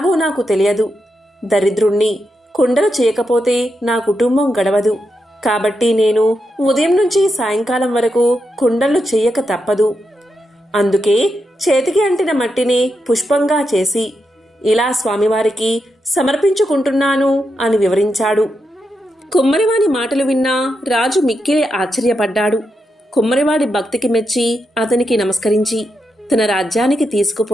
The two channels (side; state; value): both; normal; correlation 0.85